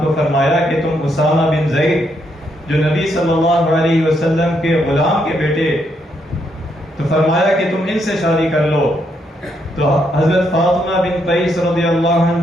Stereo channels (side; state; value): both; normal; correlation 0.76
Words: کو فرمایا کہ تم اسامہ بن زید جو نبی صلی اللہ علیہ وسلم کے غلام کے بیٹے، تو فرمایا کہ تم ان سے شادی کر لو. تو حضرت فاطمہ بن قیس رضی اللہ